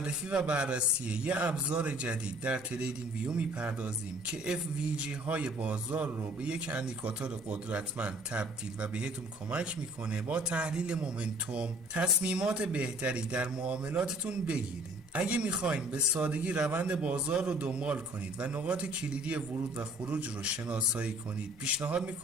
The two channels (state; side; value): normal; both; correlation 0.54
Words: و بررسی یه ابزار جدید در تریدینگ ویو میپردازیم که FVG های بازار رو به یک اندیکاتور قدرتمند تبدیل و بهتون کمک میکنه با تحلیل مومنتوم تصمیمات بهتری در معاملاتتون بگیرید. اگه میخواین به سادگی روند بازار رو دنبال کنید و نقاط کلیدی ورود و خروج رو شناسایی کنید، پیشنهاد